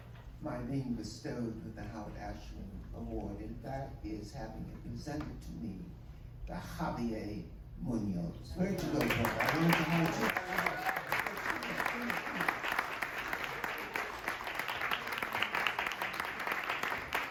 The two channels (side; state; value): both; identical; correlation 1.00